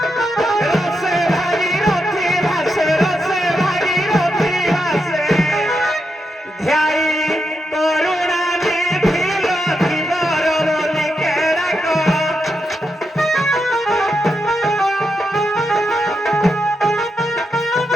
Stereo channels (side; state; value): both; normal; correlation 0.85